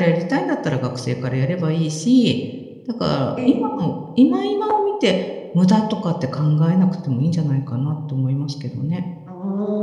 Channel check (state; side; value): identical; both; correlation 1.00